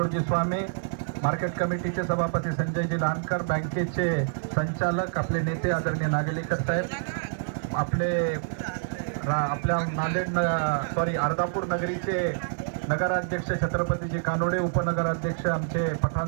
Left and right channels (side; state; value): left; silent; digital silence